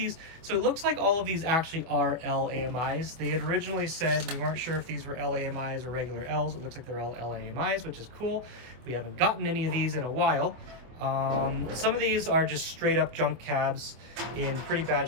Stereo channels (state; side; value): late; left; 25 ms